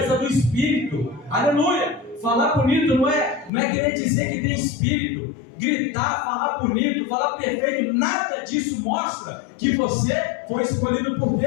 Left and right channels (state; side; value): drops out; right; at 3.5 s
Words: do Espírito. Aleluia, falar bonito não é querer dizer que tem Espírito. Gritar, falar bonito, falar perfeito, nada disso mostra que você foi escolhido por